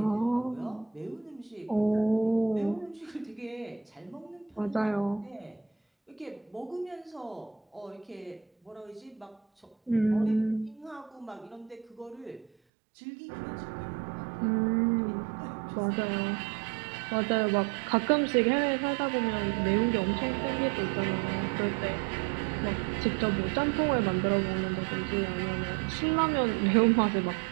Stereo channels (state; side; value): drops out; left; at 12.5 s